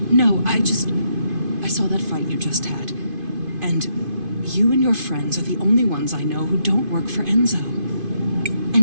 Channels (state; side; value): late; left; 2.5 ms